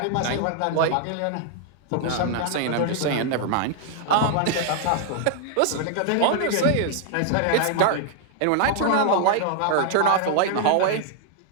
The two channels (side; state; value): both; different; correlation 0.00